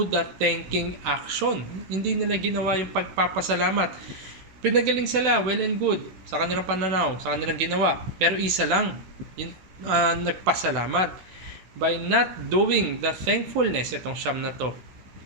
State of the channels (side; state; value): left; late; 16 ms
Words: the thanking action. Hindi nila ginawa yung pagpapasalamat. Pinagaling sila, well and good, sa kanilang pananaw, sa kanilang ginawa. Pero isa lang, yung nagpasalamat. By not doing the thankfulness, itong siyam na to,